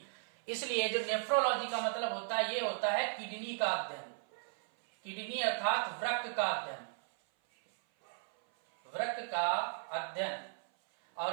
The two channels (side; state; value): left; silent; 54 dB below the other